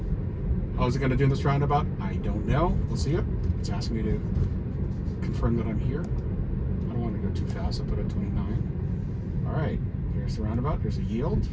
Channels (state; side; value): identical; both; correlation 1.00